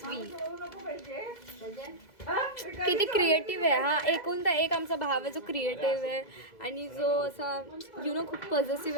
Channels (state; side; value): late; right; 2.0 ms